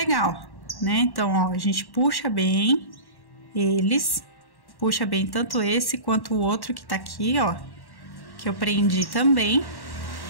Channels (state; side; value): late; right; 1.1 ms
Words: né? Então, ó, a gente puxa bem eles, puxa bem tanto esse quanto o outro que tá aqui, ó, que eu prendi também,